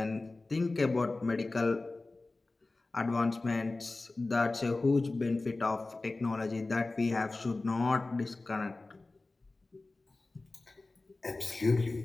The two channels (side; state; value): right; quieter; 3.3 dB